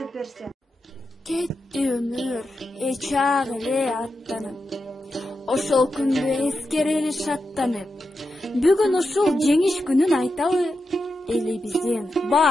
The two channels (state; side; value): normal; both; correlation 0.88